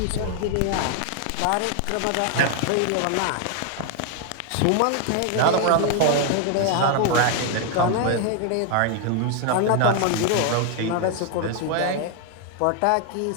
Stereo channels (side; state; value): both; different; correlation 0.00